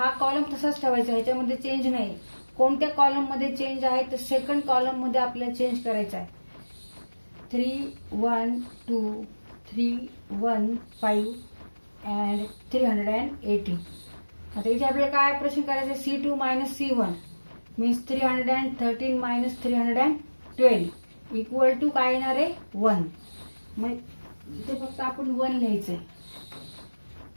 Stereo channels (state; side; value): inverted; both; correlation -1.00